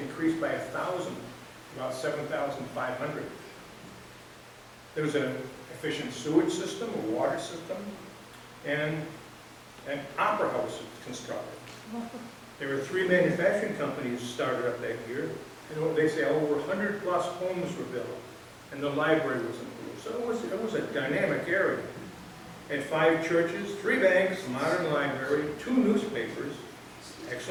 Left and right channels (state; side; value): identical; both; correlation 1.00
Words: by 1,000, about 7,500. There was an efficient sewage system, a water system, and an opera house constructed. There were 3 manufacturing companies started up that year, and they say over 100 plus homes were built, and the library was improved. So it was a dynamic area. It had 5 churches, 3 banks, a modern library, 2 newspapers,